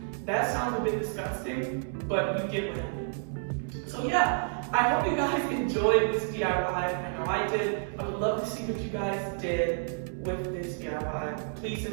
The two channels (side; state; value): left; silent; 58 dB below the other